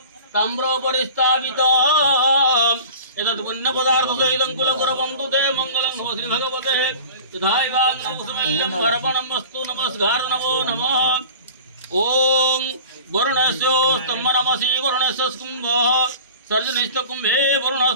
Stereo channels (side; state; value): both; inverted; correlation -0.41